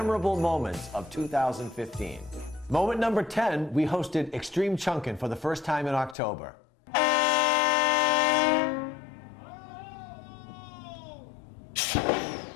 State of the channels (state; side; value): drops out; right; at 6.2 s